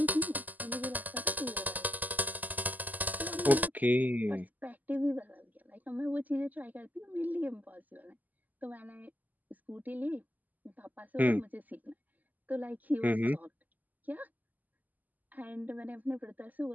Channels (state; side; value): late; left; 0.082 ms